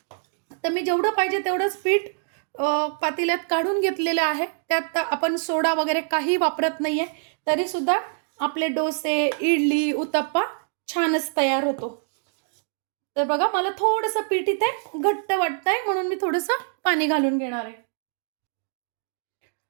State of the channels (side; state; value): left; silent; 62 dB below the other